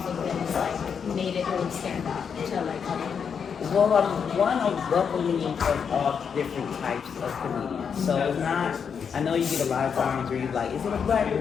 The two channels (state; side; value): quieter; right; 6.8 dB